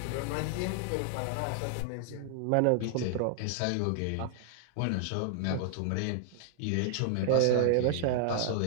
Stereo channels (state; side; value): different; both; correlation 0.00